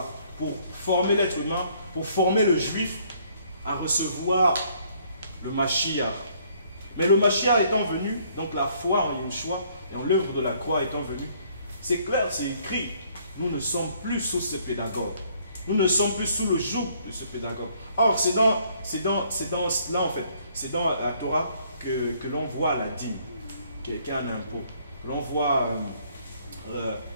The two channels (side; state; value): both; inverted; correlation -0.64